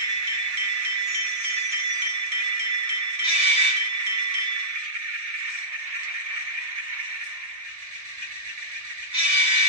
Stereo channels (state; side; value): late; left; 1.8 ms